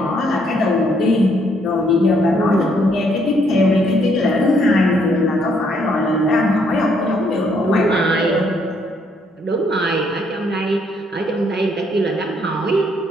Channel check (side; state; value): both; normal; correlation 0.70